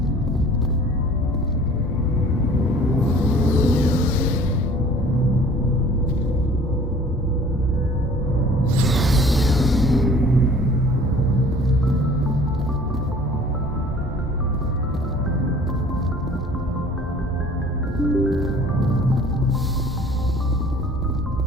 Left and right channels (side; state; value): both; normal; correlation 0.50